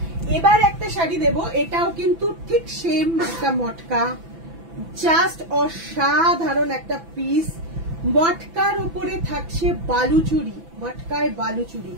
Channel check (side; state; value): left; late; 6.0 ms